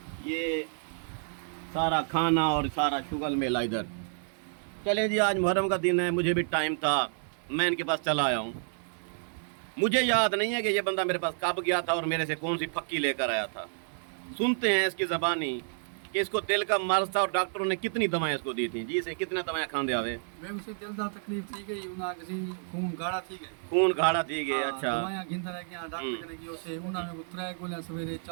ये सारा खाना और सारा शुगल मेला इधर। चले जी, आज मुहर्रम का दिन है, मुझे भी टाइम था, मैं इनके पास चला आया हूँ। मुझे याद नहीं है कि ये बंदा मेरे पास कब गया था और मेरे से कौन सी फक्की लेकर आया था। सुनते हैं इसकी ज़बानी कि इसको दिल का मर्ज था और डॉक्टरों ने कितनी दवाएं इसको दी थी। जी इसे कितने दवाएं खांदे आवे? मैं उसे दिल दा तकलीफ थी गई, उना किसी खून गाढ़ा थी गई, खून गाढ़ा थी गए। अच्छा, दवाएं गिनता रह गया, डॉक्टर ने की उसे उना में 3 गोलियां सवेरे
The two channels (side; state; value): left; silent; digital silence